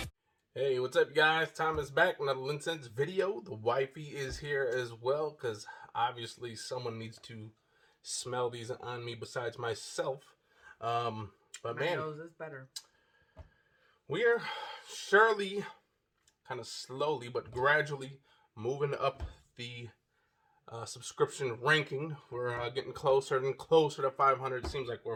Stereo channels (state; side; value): identical; both; correlation 1.00